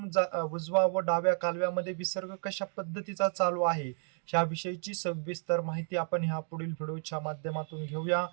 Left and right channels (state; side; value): silent; left; 56 dB below the other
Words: उजवा व डाव्या कालव्यामध्ये विसर्ग कशा पद्धतीचा चालू आहे, ह्याविषयीची सविस्तर माहिती आपण ह्या पुढील व्हिडिओच्या माध्यमातून घेऊया.